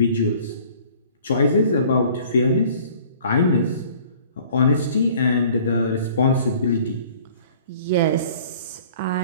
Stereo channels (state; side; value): inverted; both; correlation -0.52